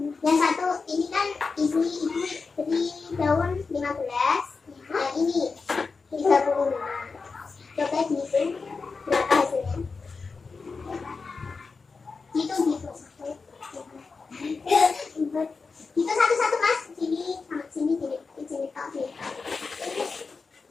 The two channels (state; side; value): quieter; right; 4.6 dB